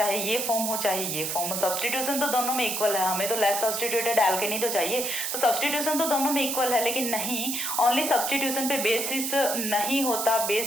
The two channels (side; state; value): right; noise; hiss, 2 dB below the sound